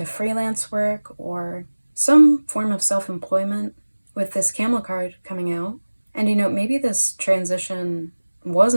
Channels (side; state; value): both; inverted; correlation -1.00